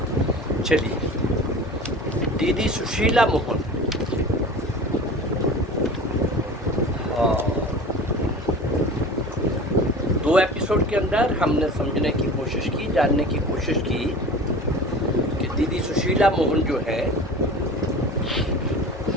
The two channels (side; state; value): both; normal; correlation 0.37